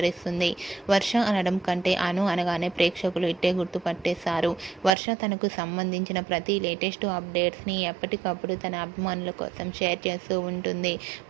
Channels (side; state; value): left; drops out; at 5.0 s